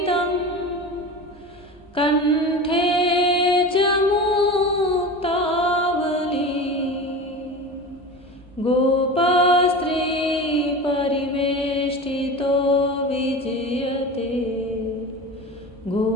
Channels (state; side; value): normal; both; correlation 0.30